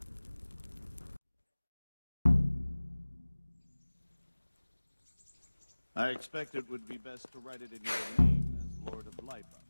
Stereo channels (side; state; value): both; inverted; correlation -1.00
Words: I expect it would be best to write it in your name as Lord of Lipa.